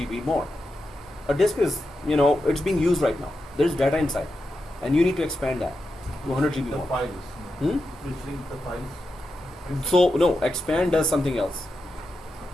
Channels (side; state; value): both; normal; correlation 0.88